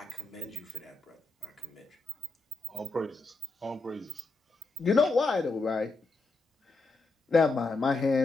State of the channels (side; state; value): right; quieter; 3.4 dB